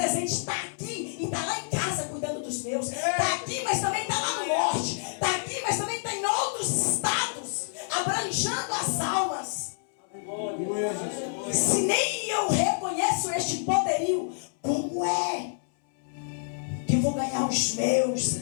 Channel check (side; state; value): right; silent; 59 dB below the other